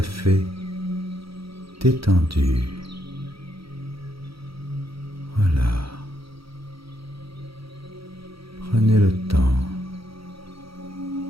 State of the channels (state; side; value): late; left; 0.75 ms